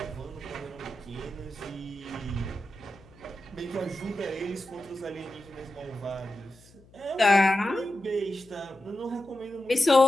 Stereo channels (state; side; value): noise; left; hum, 26 dB below the sound